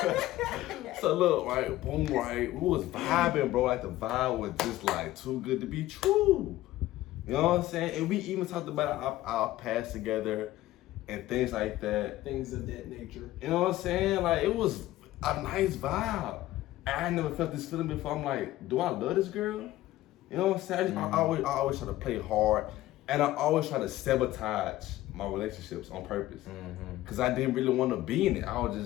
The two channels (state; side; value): quieter; right; 15.7 dB